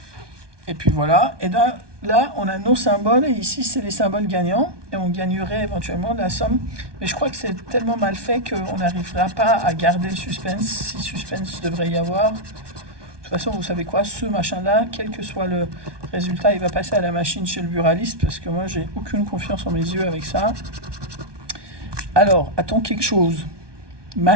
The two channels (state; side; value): late; left; 1.2 ms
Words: Et puis voilà. Et là, on a nos symboles et ici, c'est les symboles gagnants. Et on gagnerait éventuellement de la somme. Mais je crois que c'est tellement mal fait qu'on n'arrivera pas à garder le suspense, si suspense devrait y avoir. De toute façon, vous savez quoi, ce machin-là, quel que soit le résultat, il va passer à la machine chez le buraliste parce que moi, j'ai aucune confiance en mes yeux avec ça. Alors, a-t-on quelque chose?